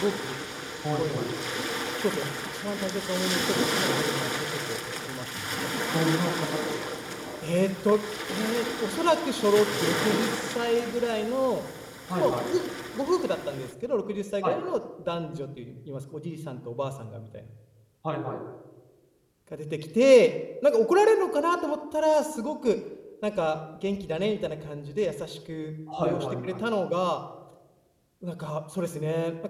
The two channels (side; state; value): both; identical; correlation 1.00